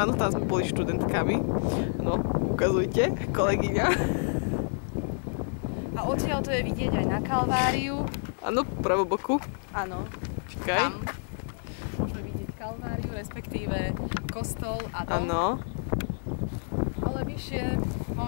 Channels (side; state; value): right; silent; digital silence